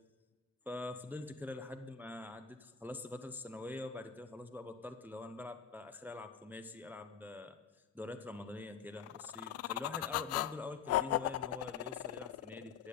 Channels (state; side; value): quieter; right; 7.4 dB